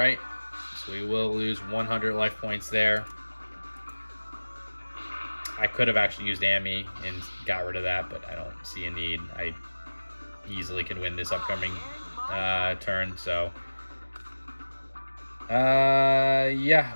so we will lose 100 life points there. I could have actually used Amy and got rid of that, but I don't see a need. I easily can win this upcoming turn, so...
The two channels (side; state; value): both; inverted; correlation -1.00